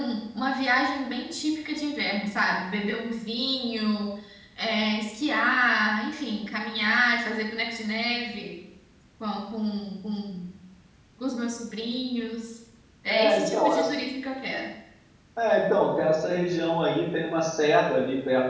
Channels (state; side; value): identical; both; correlation 1.00